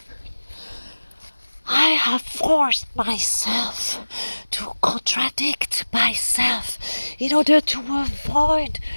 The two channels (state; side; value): inverted; both; correlation -1.00